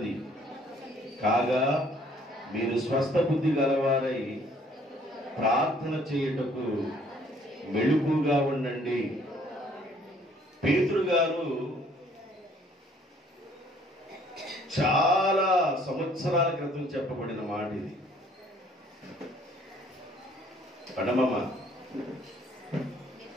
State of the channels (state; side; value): normal; both; correlation 0.60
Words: కాగా మీరు స్వస్థ బుద్ధి గలవారై ప్రార్థన చేయుటకు మెలకువగా ఉండండి. పేతురు గారు చాలా సంవత్సరాల క్రితం చెప్పబడిన మాట ఇది. పడమమ్మ